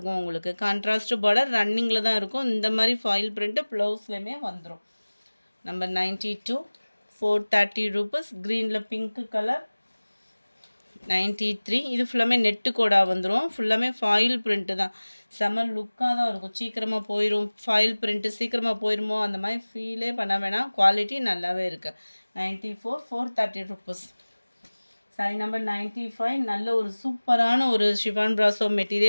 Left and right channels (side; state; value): both; inverted; correlation -1.00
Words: உங்களுக்கு கான்ட்ராஸ்ட் பார்டர் ரன்னிங்கில் தான் இருக்கும் இந்த மாதிரி ஃபாயில் பிரிண்ட்டு ப்ளவுஸ்லேயுமே வந்துடும் நம்பர் 92 430 rupees க்ரீனில் பிங்க் கலர் 93 இது ஃபுல்லாமே நெட்டு கோடா வந்துடும் ஃபுல்லாமே ஃபாயில் பிரிண்ட்டு தான் செம்ம லுக்காக தான் இருக்கும் சீக்கிரமாக போயிடும் ஃபாயில் பிரிண்ட்டு சீக்கிரமாக போயிடுமோ அந்த மாதிரி ஃபீலே பண்ண வேணாம் குவாலிட்டி நல்லாவே இருக்குது 94 430 rupees சாரி நம்பர் 95 நல்ல ஒரு சூப்பரான ஒரு ஷிஃபான் பிராசோ